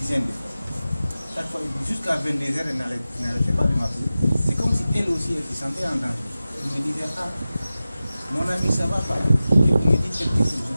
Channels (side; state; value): both; inverted; correlation -0.95